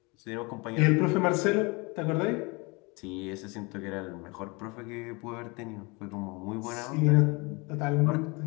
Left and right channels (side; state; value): right; quieter; 27.7 dB